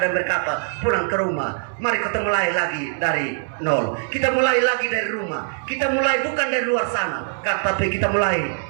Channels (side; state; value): left; silent; 64 dB below the other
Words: berkata, pulang ke rumah. Mari kita mulai lagi dari nol. Kita mulai lagi dari rumah. Kita mulai bukan dari luar sana, tapi kita mulai